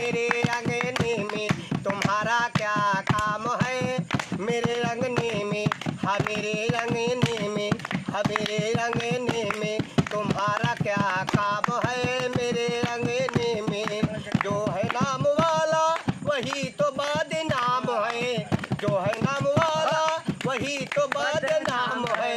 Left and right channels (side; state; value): both; identical; correlation 1.00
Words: रंगने में तुम्हारा क्या काम है, मेरे रंगने में मेरे रंगने में मेरे रंगने में तुम्हारा क्या काम है, मेरे रंगने में जो है नाम वाला वही तो बदनाम है, जो है नाम वाला वही तो बदनाम